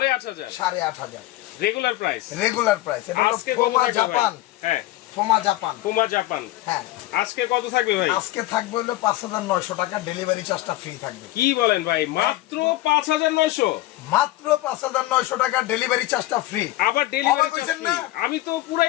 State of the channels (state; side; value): quieter; right; 16.8 dB